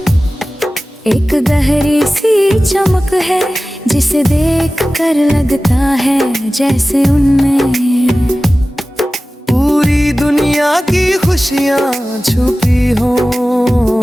एक गहरी सी चमक है, जिसे देख कर लगता है जैसे उनमें पूरी दुनिया की खुशियाँ छुपी हो।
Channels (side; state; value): both; normal; correlation 0.96